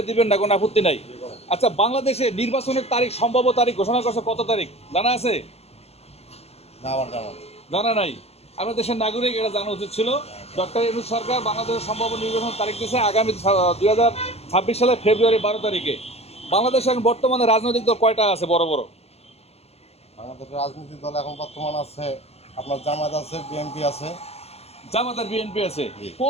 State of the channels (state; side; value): late; right; 0.30 ms